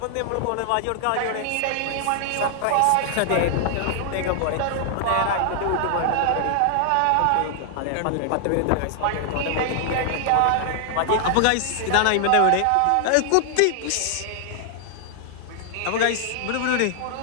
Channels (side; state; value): both; different; correlation 0.00